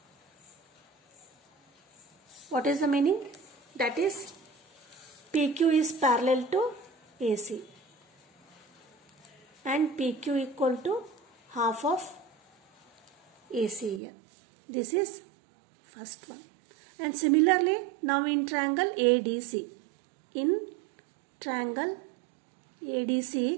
what is the meaning? that is PQ is parallel to AC and PQ equal to half of AC here. This is first one. And similarly, now in triangle ADC, in triangle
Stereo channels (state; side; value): drops out; left; at 14.0 s